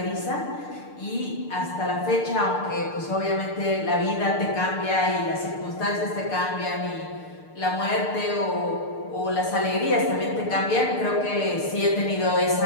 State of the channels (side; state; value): right; late; 6.7 ms